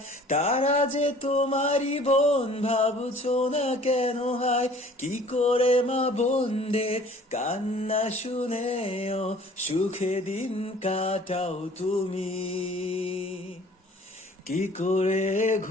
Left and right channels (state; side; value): normal; both; correlation 0.51